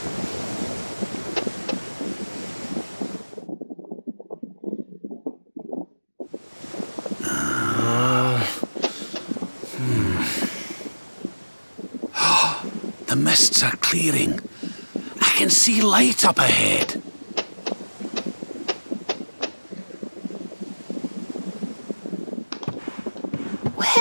The mists are clearing. I can see light up ahead.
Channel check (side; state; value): both; inverted; correlation -1.00